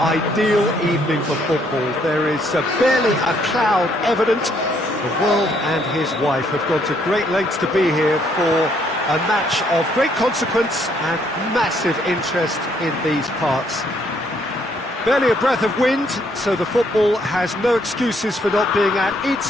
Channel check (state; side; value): normal; both; correlation 0.69